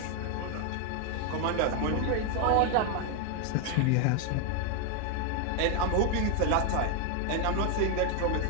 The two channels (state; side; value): different; both; correlation 0.01